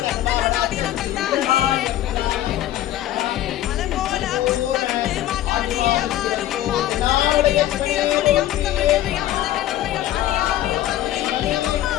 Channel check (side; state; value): right; quieter; 13.6 dB